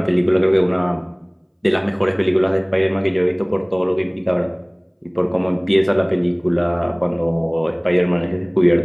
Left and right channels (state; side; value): identical; both; correlation 1.00